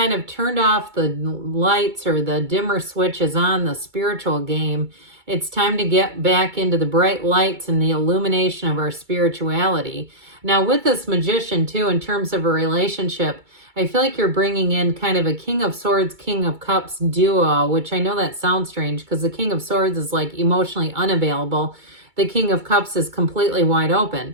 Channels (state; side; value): late; left; 2.2 ms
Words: of turned off the lights or the dimmer switches on the spiritual game, it's time to get back into the bright lights and the illumination of our spirituality. Now with this Magician too, in terms of a relationship, I feel like you're bringing in kind of a King of Swords, King of Cups duo, which I know that sounds strange because the King of Swords is like emotionally unavailable. The King of Cups is completely wide